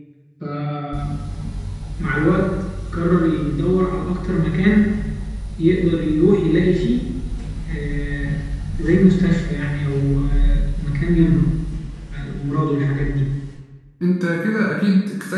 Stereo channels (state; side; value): identical; both; correlation 1.00